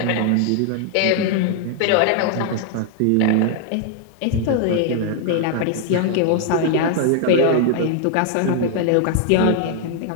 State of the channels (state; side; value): different; both; correlation 0.00